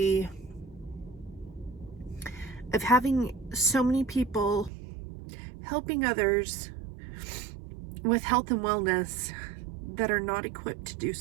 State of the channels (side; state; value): left; drops out; at 4.7 s